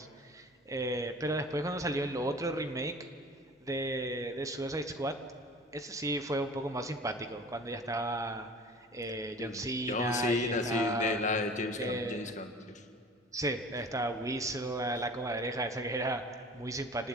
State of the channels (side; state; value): both; normal; correlation 0.43